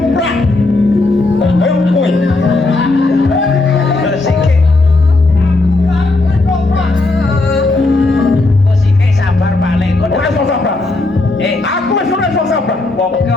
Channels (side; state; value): right; quieter; 3.1 dB